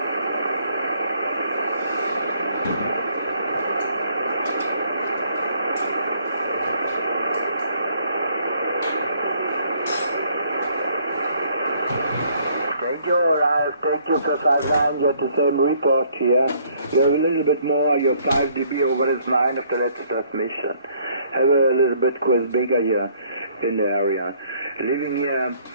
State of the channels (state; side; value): inverted; both; correlation -0.63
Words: Thank you for 59, you're the same report here. You have a little bit more, you're 5 dB over his 9 of the latest transmission. Have a little bit quiz bigger here in the area. Living here